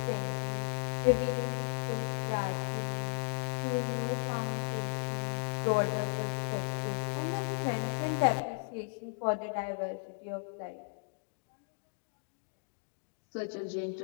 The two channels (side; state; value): right; silent; digital silence